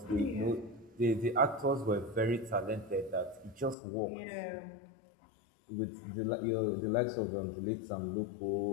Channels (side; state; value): right; drops out; at 3.8 s